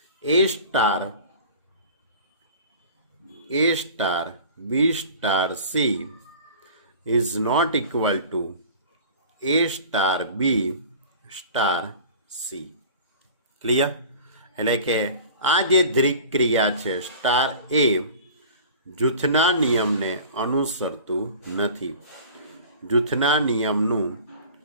A star B star C is not equal to A star B star C. Clear? એટલે કે આ જે દ્વિક ક્રિયા છે સ્ટાર એ જૂથના નિયમને અનુસરતું નથી, જૂથના નિયમનું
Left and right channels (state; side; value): inverted; both; correlation -0.42